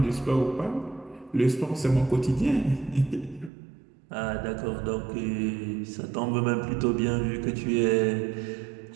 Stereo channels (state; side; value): drops out; left; at 3.5 s